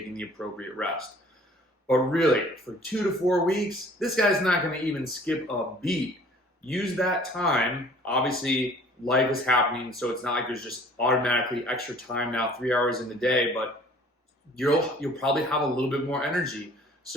the appropriate rest. But really, for 2 to 4 weeks, this guy's not going to even skip a beat. Use that time. Obviously, life is happening, so it's not like there's just automatically extra time now, 3 hours in the day, but you'll probably have a little bit more energy.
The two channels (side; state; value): both; normal; correlation 0.52